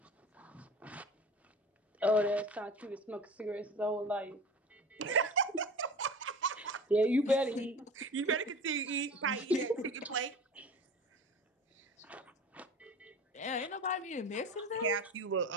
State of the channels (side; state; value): both; normal; correlation 0.36